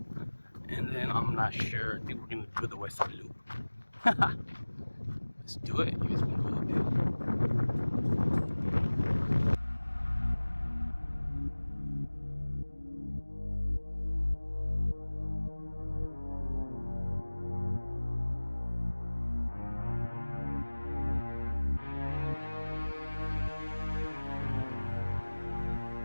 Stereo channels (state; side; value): inverted; both; correlation -1.00